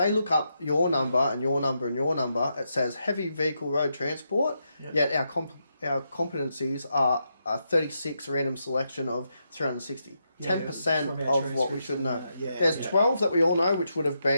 look up your number and your number and your number, it says heavy vehicle road transport, yet our competencies are a 36 random selection of 360. 10% of what we should know. There's 12 that we all know, which would have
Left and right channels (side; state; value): both; inverted; correlation -0.83